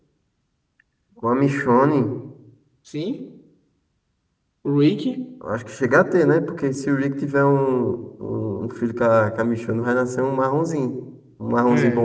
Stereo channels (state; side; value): identical; both; correlation 1.00